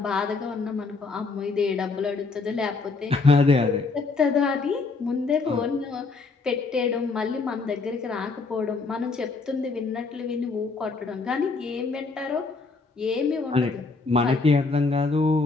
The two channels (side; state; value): right; quieter; 4.1 dB